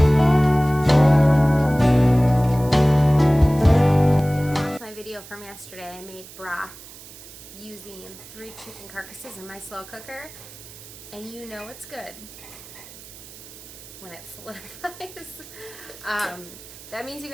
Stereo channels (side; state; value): right; noise; hiss, 18 dB below the sound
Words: Video from yesterday. I made broth using 3 chicken carcasses in my slow cooker, and you know it's good when it solidifies. That means you